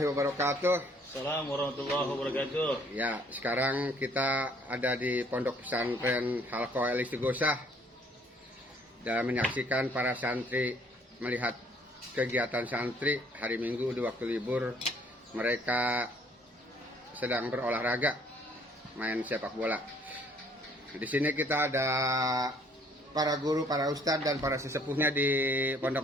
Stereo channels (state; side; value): normal; both; correlation 0.60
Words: wabarakatuh. Assalamualaikum warahmatullahi wabarakatuh. Ya, sekarang kita ada di Pondok Pesantren Halqa Al-Istighosah dan menyaksikan para santri melihat kegiatan santri hari Minggu di waktu libur. Mereka sedang berolahraga, main sepak bola. Di sini kita ada para guru, para ustadz dan para sesepuhnya di